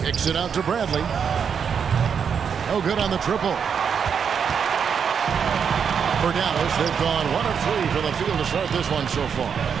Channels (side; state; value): left; quieter; 7.0 dB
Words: Kicks it out to Bradley. No good on the triple. For Dallas, they've gone 1 of 3 from the field to start this one so far.